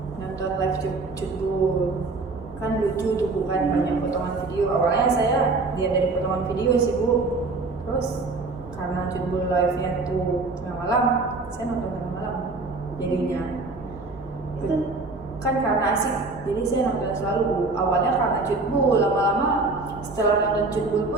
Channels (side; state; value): left; quieter; 3.6 dB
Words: nonton live Cutbul, kan lucu tuh bukan banyak potongan video. Awalnya saya lihat dari potongan video sih Bu, terus karena Cutbul live-nya tuh tengah malam, saya nonton tengah malam jadinya. Itu Kan karena asik, jadi saya nonton selalu Bu. Awalnya karena Cutbul, lama-lama setelah nonton Cutbul